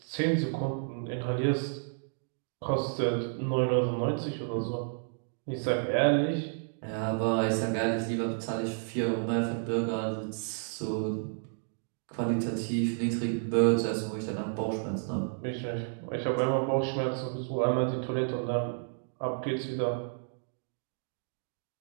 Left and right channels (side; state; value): left; silent; digital silence